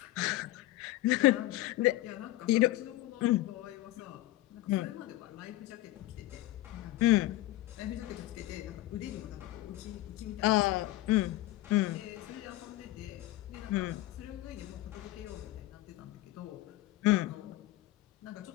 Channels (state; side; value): quieter; right; 16.6 dB